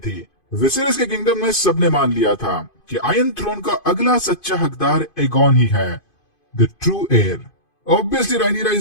विसेरिस के किंगडम में सबने मान लिया था कि आयरन थ्रोन का अगला सच्चा हकदार एगॉन ही है, द ट्रू एयर। ऑब्वियसली रायनीरा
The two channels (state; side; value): late; right; 2.5 ms